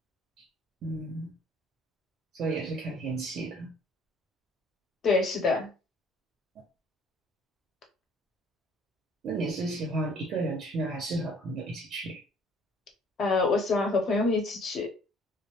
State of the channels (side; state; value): both; normal; correlation 0.57